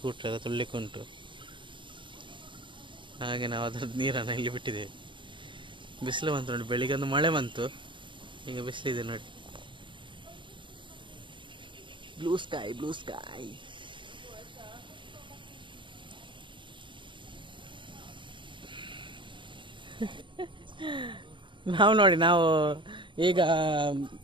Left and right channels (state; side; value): late; left; 0.24 ms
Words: ಎಲ್ಲ ತೊಳ್ಲಿಕ್ಕೆ ಉಂಟು. ಹಾಗೆ ನಾವು ಅದ್ರದ್ದು ನೀರನ್ನು ಇಲ್ಲಿ ಬಿಟ್ಟಿದ್ದೇವೆ. ಬಿಸಿಲು ಬಂತು ನೋಡಿ, ಬೆಳಿಗ್ಗೆ ಒಂದು ಮಳೆ ಬಂತು, ಈಗ ಬಿಸಿಲಿದೆ ನೋಡಿ. Blue sky blue sky. ನಾವು ಈಗ